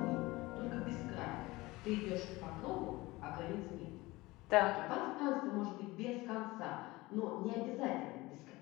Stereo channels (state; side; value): quieter; right; 20.8 dB